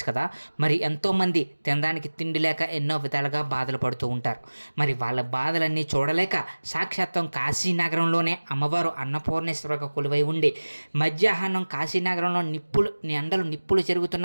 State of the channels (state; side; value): inverted; both; correlation -1.00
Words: కదా. మరి ఎంతోమంది తినడానికి తిండి లేక ఎన్నో విధాలుగా బాధలు పడుతూ ఉంటారు. మరి వాళ్ళ బాధలన్నీ చూడలేక సాక్షాత్తం కాశీనగరంలోనే అమ్మవారు అన్నపూర్ణేశ్వరగా కొలువై ఉండి మధ్యాహ్నం కాశీనగరంలో నిప్పులు